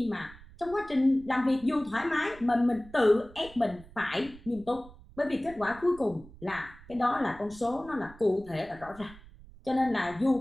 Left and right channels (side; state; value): right; noise; rumble, 21 dB below the sound